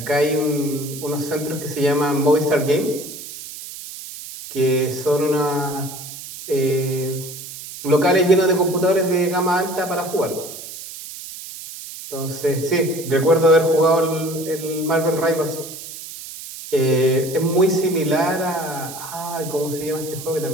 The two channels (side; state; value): right; noise; hiss, 12 dB below the sound